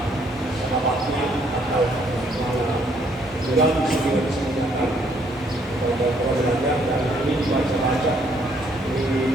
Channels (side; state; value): both; normal; correlation 0.67